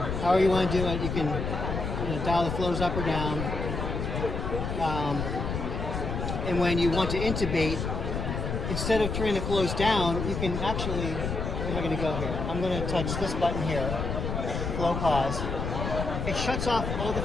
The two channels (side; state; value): left; noise; rumble, 3 dB below the sound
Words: you want to do it, you can dial the flows up or down. And when you want to intubate, instead of turning the flows down, you can actually, where am I going to go here? I'm going to touch this button here, flow pause. It shuts off all the